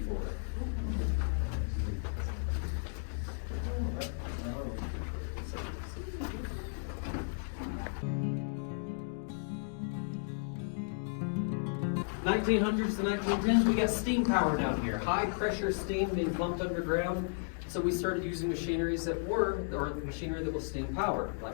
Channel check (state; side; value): silent; right; digital silence